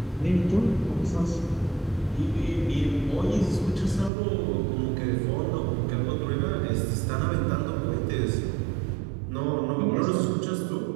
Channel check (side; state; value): left; drops out; at 4.1 s